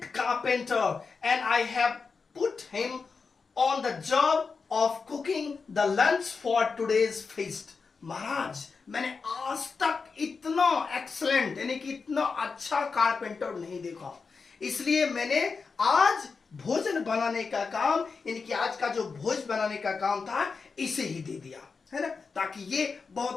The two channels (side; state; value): right; quieter; 4.9 dB